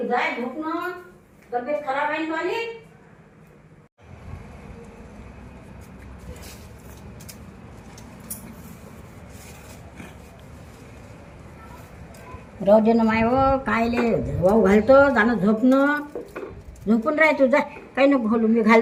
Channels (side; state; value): both; identical; correlation 1.00